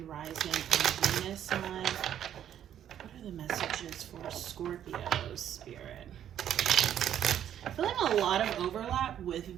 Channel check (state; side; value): quieter; left; 10.2 dB